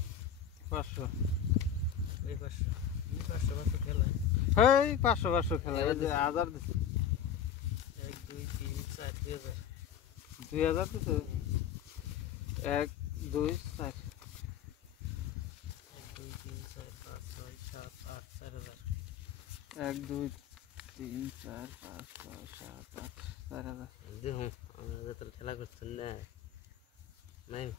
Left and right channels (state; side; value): quieter; right; 8.6 dB